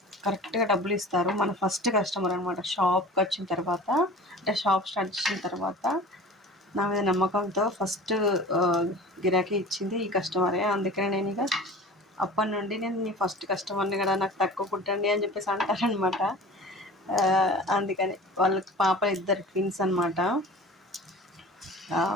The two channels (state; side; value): normal; both; correlation 0.40